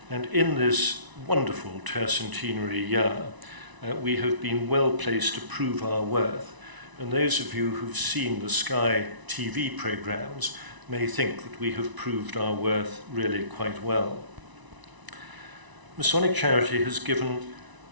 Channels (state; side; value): late; left; 1.0 ms